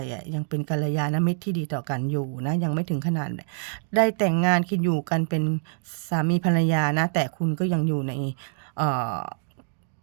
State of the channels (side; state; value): left; silent; 59 dB below the other